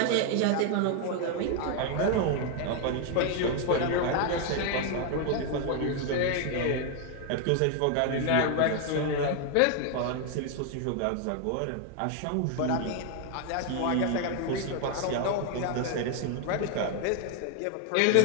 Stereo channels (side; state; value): both; different; correlation 0.01